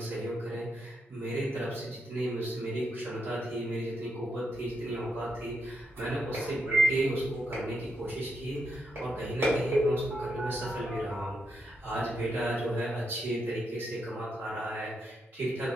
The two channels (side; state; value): both; normal; correlation 0.81